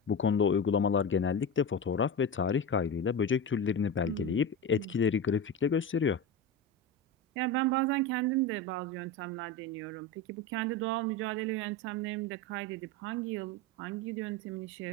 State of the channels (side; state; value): both; normal; correlation 0.22